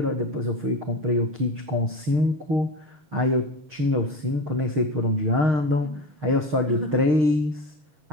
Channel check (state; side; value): late; left; 6.5 ms